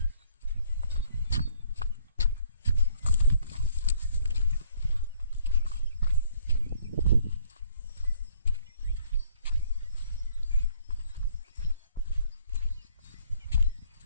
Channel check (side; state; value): both; inverted; correlation -0.62